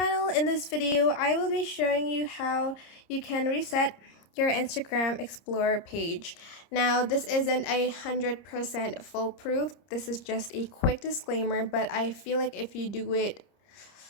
In this video, I will be showing you how you can reset your Instagram Explorer page. Now, this isn't 100% foolproof. This is just a quick disclaimer, but I feel like if you do it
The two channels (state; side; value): late; right; 30 ms